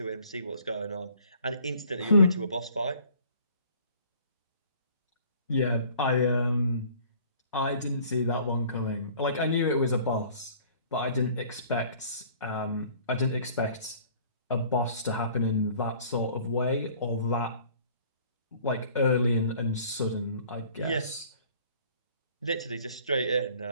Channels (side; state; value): both; inverted; correlation -0.53